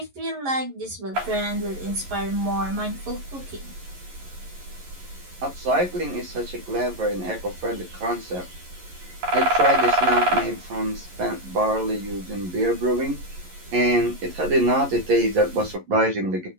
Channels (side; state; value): left; late; 11 ms